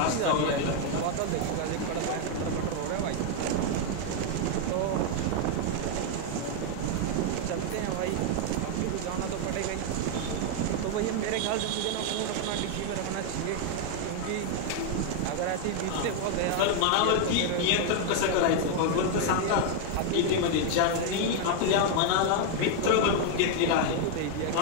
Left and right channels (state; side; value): different; both; correlation 0.00